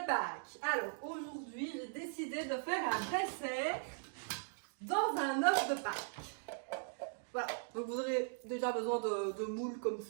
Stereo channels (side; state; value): left; silent; digital silence